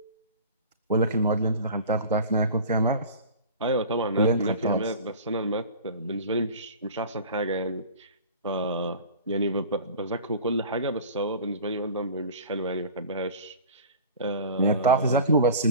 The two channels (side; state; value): both; inverted; correlation -0.40